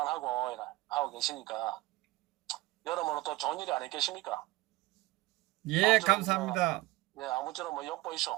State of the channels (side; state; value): left; quieter; 19.7 dB